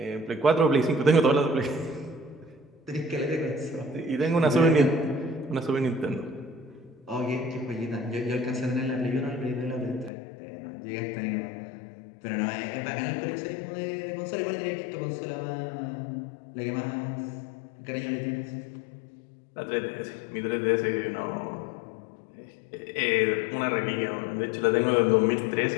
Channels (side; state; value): right; drops out; at 10.1 s